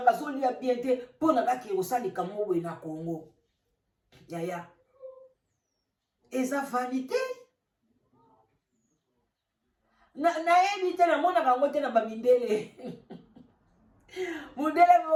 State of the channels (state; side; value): identical; both; correlation 1.00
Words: azolia bien te mpo na kaka osalika mo boye na Congo. Yaya, eza vanité. nayebi te namona kango te na bamindele mundele